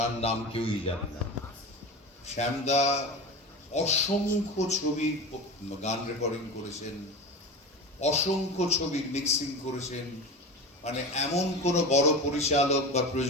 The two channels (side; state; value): both; normal; correlation 0.28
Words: নাম কেউই জানে না। শ্যামদা অসংখ্য ছবি গান রেকর্ডিং করেছেন, অসংখ্য ছবির মিক্সিং করেছেন। মানে এমন কোনো বড় পরিচালক বা